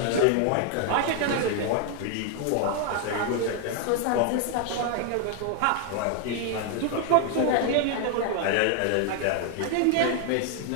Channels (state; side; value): different; both; correlation 0.00